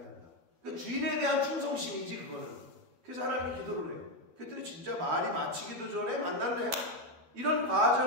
그러니까 주인에 대한 충성심이지 그거는. 그래서 하나님이 기도를 해요. 그랬더니 진짜 말이 마치기도 전에 만났네. 이런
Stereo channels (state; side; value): late; left; 12 ms